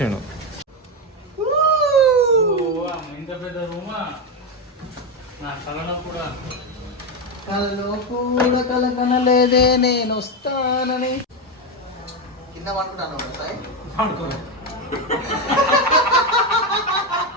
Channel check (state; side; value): normal; both; correlation 0.10